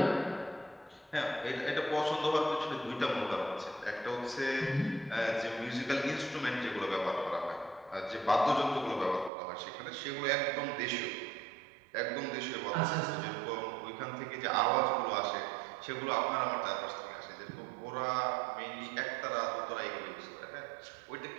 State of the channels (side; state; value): left; drops out; at 9.3 s